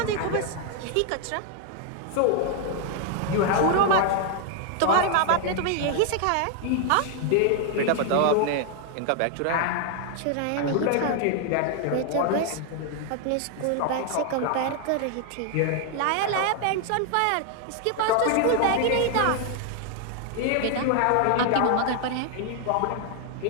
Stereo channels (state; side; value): different; both; correlation 0.00